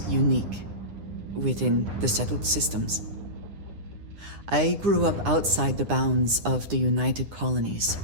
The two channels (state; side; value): late; left; 9.8 ms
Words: unique within the settled systems. I grew up outside the bounds of the United Colonies,